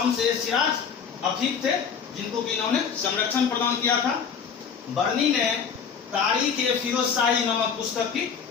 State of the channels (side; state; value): right; quieter; 6.7 dB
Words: ए सिराज अफीफ थे, जिनको कि इन्होंने संरक्षण प्रदान किया था। बर्नी ने तारीख ए फिरोज शाही नामक पुस्तक की